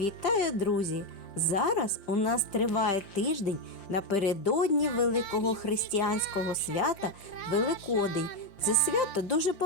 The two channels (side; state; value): right; late; 5.7 ms